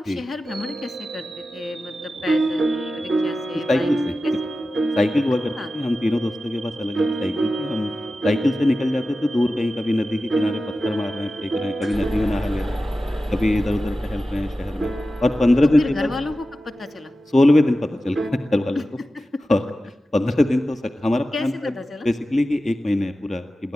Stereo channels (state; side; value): normal; both; correlation 0.94